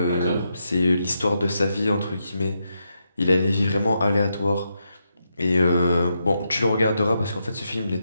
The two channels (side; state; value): both; inverted; correlation -0.83